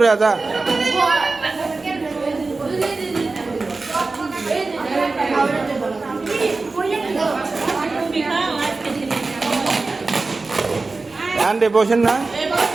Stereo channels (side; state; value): left; quieter; 3.7 dB